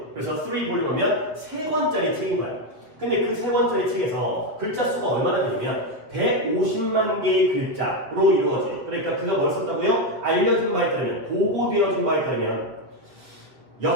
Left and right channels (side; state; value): left; late; 7.8 ms